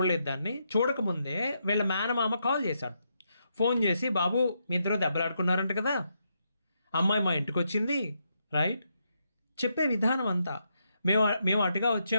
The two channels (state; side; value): inverted; both; correlation -0.80